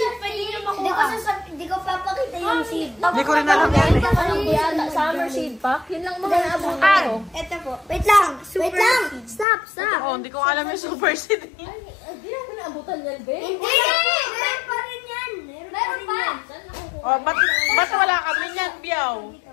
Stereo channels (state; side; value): drops out; right; at 9.5 s